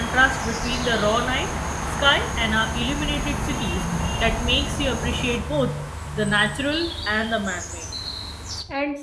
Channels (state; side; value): identical; both; correlation 1.00